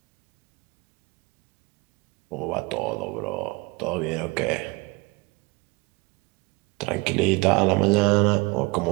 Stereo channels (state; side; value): quieter; left; 25.2 dB